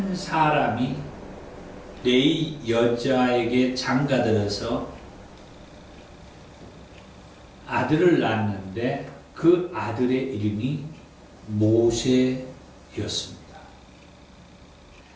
사람이 레위 여자에게 장가들어서 아들을 낳았는데 그 아들의 이름이 모세였습니다.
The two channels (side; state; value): both; identical; correlation 1.00